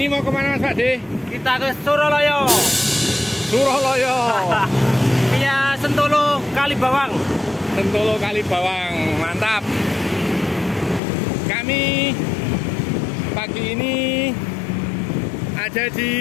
mau kemana Mas Pak De? Kita ke Suraloyo. Suraloyo. Via Sentolo Kalibawang. Sentolo Kalibawang, mantap. Kami pagi ini ada di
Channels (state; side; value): drops out; right; at 11.0 s